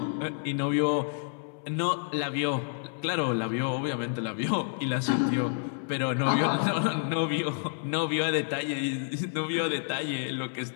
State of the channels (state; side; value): silent; right; 56 dB below the other